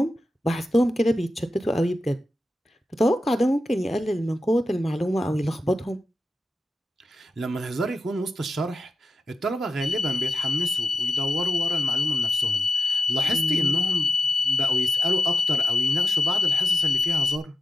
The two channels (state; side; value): normal; both; correlation 0.89